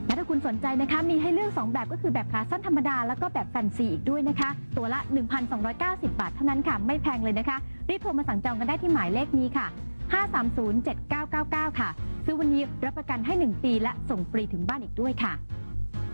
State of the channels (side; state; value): both; inverted; correlation -1.00